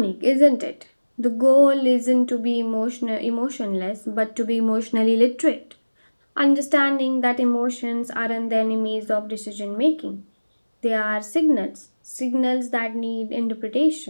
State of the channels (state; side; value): inverted; both; correlation -1.00